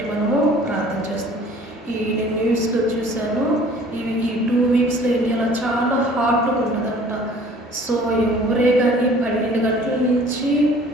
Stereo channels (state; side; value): normal; both; correlation 0.51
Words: మనము ప్రార్థన చేస్తాం. నేను న్యూస్లో చూశాను, ఈ 2 వీక్స్లో ఇండియాలో చాలా హాట్గా ఉంటుందంట. సో ఎవరే కానీ 12 గంటల నుంచి